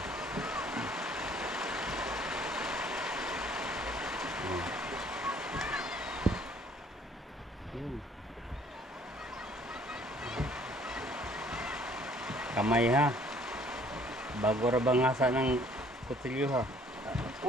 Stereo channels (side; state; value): both; normal; correlation 0.59